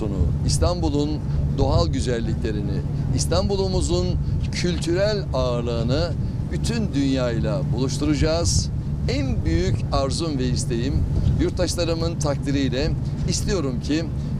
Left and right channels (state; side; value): identical; both; correlation 1.00